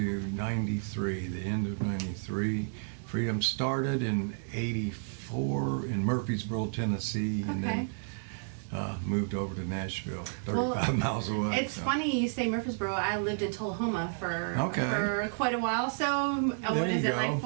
'93, the end of '93. Freedom started in '84 in Murfreesboro, Tennessee, and then moved over to Nashville, 35 miles away. It's funny you say Murfreesboro. I lived in Tullahoma for quite a while. So what is it, like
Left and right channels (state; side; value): silent; left; digital silence